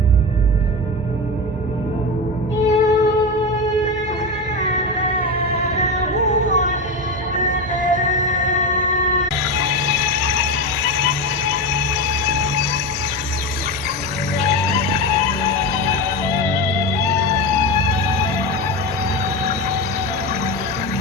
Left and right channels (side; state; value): both; normal; correlation 0.19